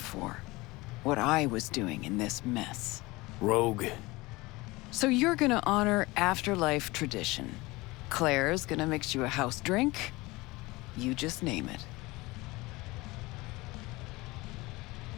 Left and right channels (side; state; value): right; quieter; 22.0 dB